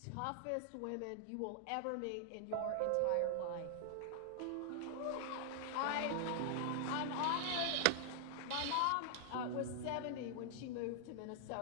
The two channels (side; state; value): both; different; correlation -0.01